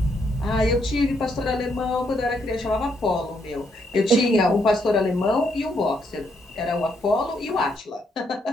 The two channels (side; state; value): both; normal; correlation 0.75